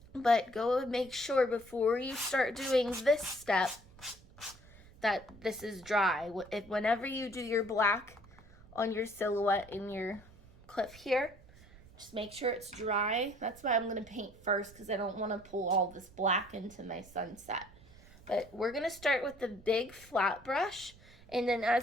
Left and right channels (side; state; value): right; noise; rumble, 23 dB below the sound